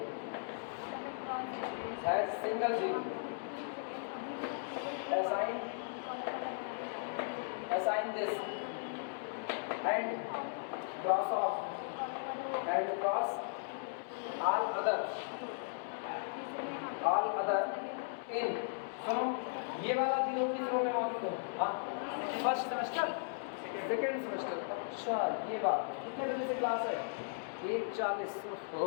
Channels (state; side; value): silent; right; digital silence